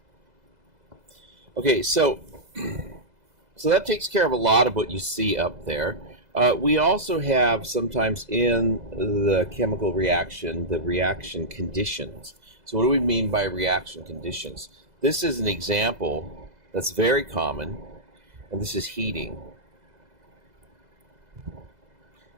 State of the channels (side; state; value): left; late; 2.0 ms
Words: Okay, so that takes care of a lot of what you see up there. We also have sometimes in the chemical reaction the reaction conditions. So what do we mean by reaction conditions? This is an example that's very common, and this is heating.